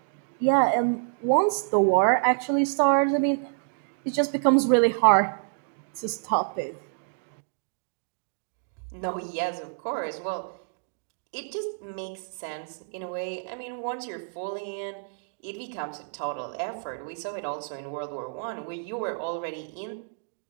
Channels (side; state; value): left; silent; digital silence